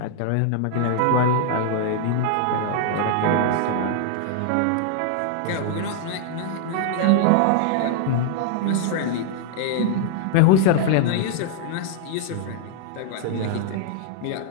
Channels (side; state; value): both; different; correlation -0.01